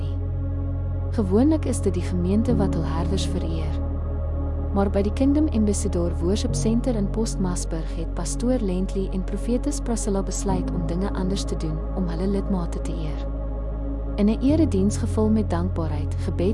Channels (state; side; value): identical; both; correlation 1.00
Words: Gewoonlik is dit die gemeente wat hul herders vereer. Maar by die Kingdom Ambassador Worship Center in Postmasburg het pastoor Lentley en profetes Priscilla besluit om dinge anders te doen om hulle lidmate te eer. In 'n erediens gevul met dankbaarheid,